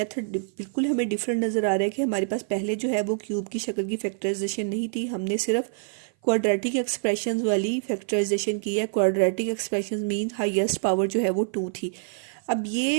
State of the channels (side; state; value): left; silent; 56 dB below the other